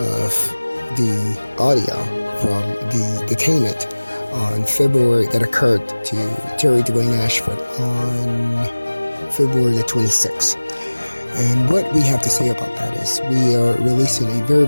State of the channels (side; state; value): both; inverted; correlation -1.00